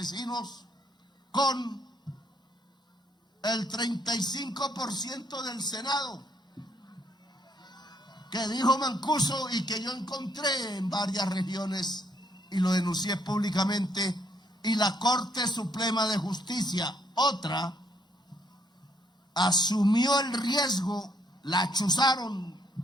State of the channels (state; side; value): normal; both; correlation 0.70